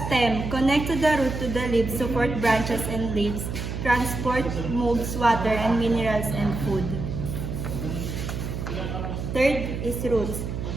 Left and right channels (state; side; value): noise; right; hum, 5 dB below the sound